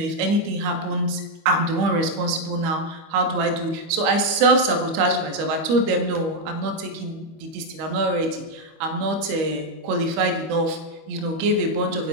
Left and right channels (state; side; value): late; left; 25 ms